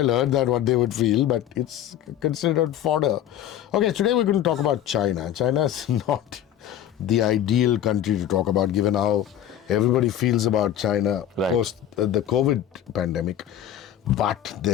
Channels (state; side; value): quieter; right; 11.0 dB